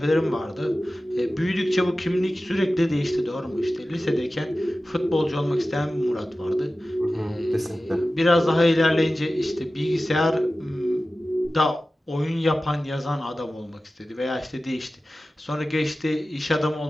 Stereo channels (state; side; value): normal; both; correlation 0.95